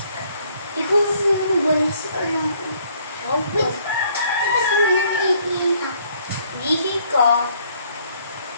Ikaw naman ba na si Alam ko? Oh, Wait, labas mo na naiihi na. Lihi ka.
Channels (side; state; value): both; inverted; correlation -0.64